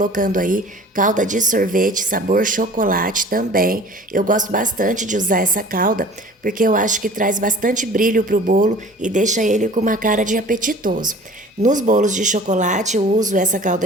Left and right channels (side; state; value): both; normal; correlation 0.45